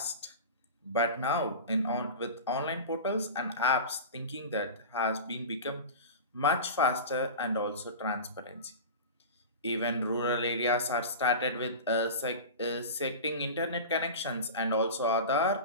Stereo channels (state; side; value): inverted; both; correlation -0.30